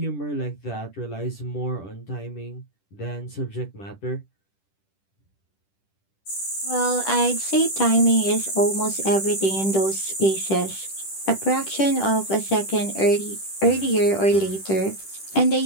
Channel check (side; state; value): right; late; 10 ms